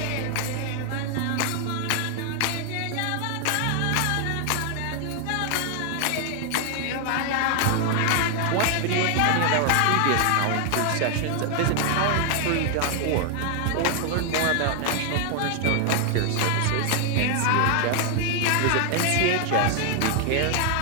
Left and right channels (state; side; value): different; both; correlation 0.00